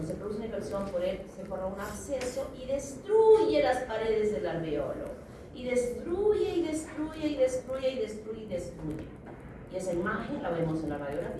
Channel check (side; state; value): both; identical; correlation 1.00